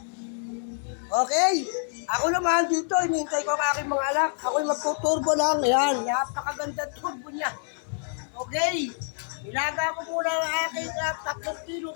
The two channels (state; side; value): silent; right; 57 dB below the other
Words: Okay. Ako naman dito, hinihintay ko ang aking mga anak. Ako'y magtuturbo lang. Ayan, napakaganda turbo niya. Okay. Ilaga ko muna ang aking 3 kilo